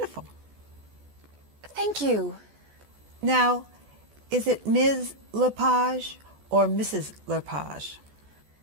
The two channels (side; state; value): left; late; 14 ms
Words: Thank you. Now, is it Ms. Lepage or Mrs. Lepage?